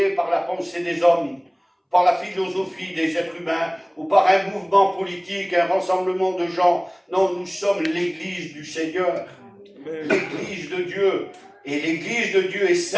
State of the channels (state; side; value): identical; both; correlation 1.00